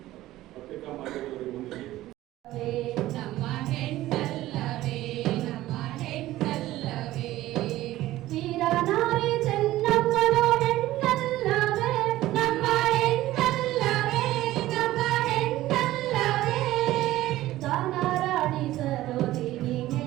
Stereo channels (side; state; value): left; quieter; 15.7 dB